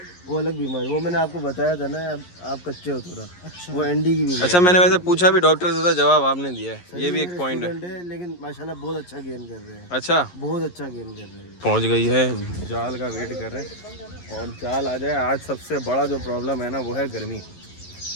वो अलग बीमारी, वो मैंने आपको बताया था ना, आप कच्चे हो थोड़ा। अच्छा, वो एंडी की बीमारी। अच्छा, मैंने वैसे पूछा भी डॉक्टर से था, जवाब आपने दिया है, ये भी एक पॉइंट है। लेकिन माशाल्लाह बहुत अच्छा गेन कर रहे हैं। अच्छा, बहुत अच्छा गेन कर रहे हैं। पहुंच गई है, जाल का वेट कर रहे हैं और जाल आ जाए। आज सबसे बड़ा जो प्रॉब्लम है ना वो है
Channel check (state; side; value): late; right; 11 ms